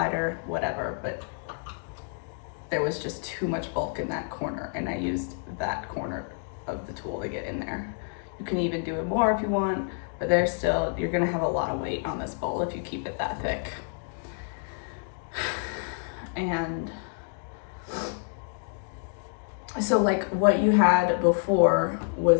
Whatever, but there was just too much bulk in that corner and I used that corner of the tool to get in there. You can even do it more if you want, but there's still, you're gonna have a lot of weight on this bowl if you keep it that thick. And so like what you had before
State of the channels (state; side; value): silent; right; 59 dB below the other